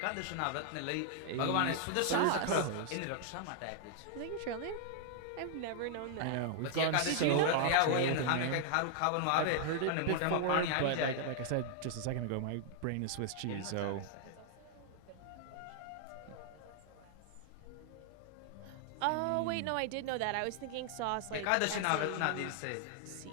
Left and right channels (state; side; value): different; both; correlation 0.00